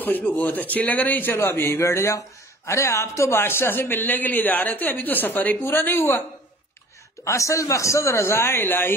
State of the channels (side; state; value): both; normal; correlation 0.49